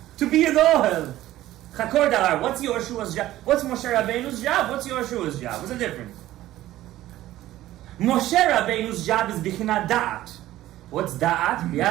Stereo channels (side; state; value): left; quieter; 14.9 dB